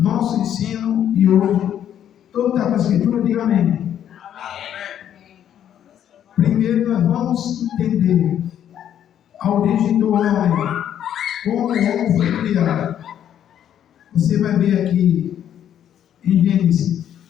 ensino de hoje, todo está com a Escritura, diga amém. Primeiro, nós vamos entender a origem do homem, como o homem foi criado. Você vai ver aqui em Gênesis,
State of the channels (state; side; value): quieter; right; 10.1 dB